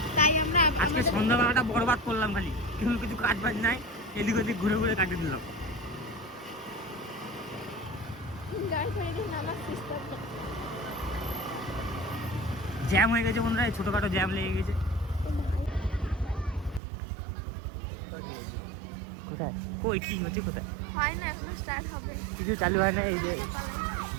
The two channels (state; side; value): drops out; left; at 16.8 s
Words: তাই আমরা আজকে সন্ধ্যাবেলাটা বরবাদ করলাম, খালি কিছু কাজ বাজ নাই, এদিক ওদিক ঘুরে ঘুরে কাটিয়ে দিলাম। গাড়ি ছেড়ে দিয়ে নামার চেষ্টা করছি। জ্যাম হয়ে গেছে বন্ধুরা, এই ছোটখাটো জ্যাম লেগে গেছে। কোথায় কই কি হচ্ছে কোথায় হয় না, এখনো স্টার্ট হবে। কিছু চালু হয় না, এই যে